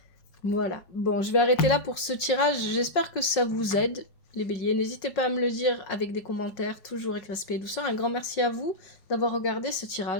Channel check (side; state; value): right; late; 5.1 ms